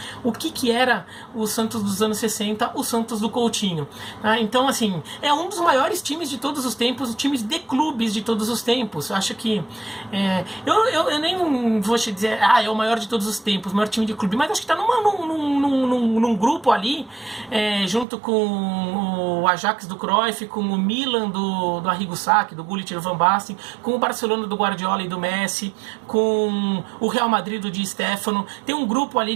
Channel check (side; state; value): left; drops out; at 18.1 s